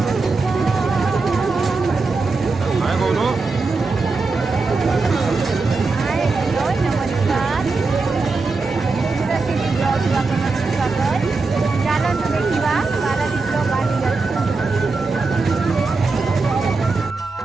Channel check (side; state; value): left; quieter; 3.9 dB